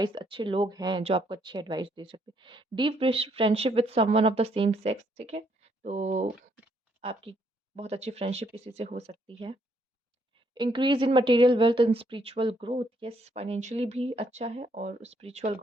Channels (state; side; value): normal; both; correlation 0.71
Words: अच्छे लोग हैं जो आपको अच्छी एडवाइस दे सकते हैं। Deep friendship with someone of the same sex, ठीक है? तो आपकी बहुत अच्छी फ्रेंडशिप किसी से हो सकती है। Increase in material wealth and spiritual growth, yes, financially भी अच्छा है और स्पिरिचुअल